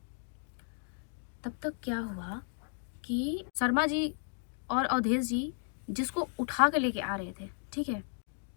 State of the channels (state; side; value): silent; right; 55 dB below the other